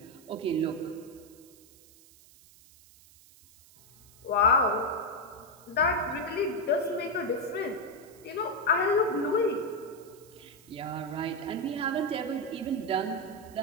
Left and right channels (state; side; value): noise; right; hiss, 24 dB below the sound